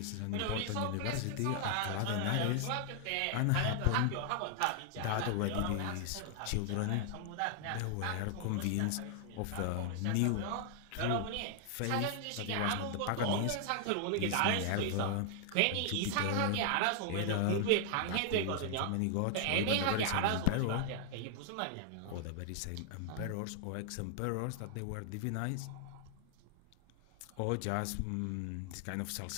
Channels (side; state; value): both; different; correlation 0.00